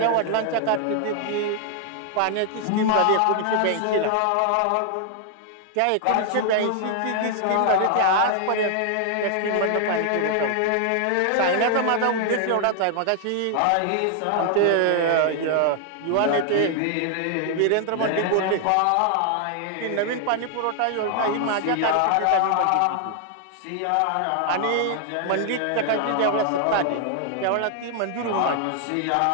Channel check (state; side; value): different; both; correlation 0.00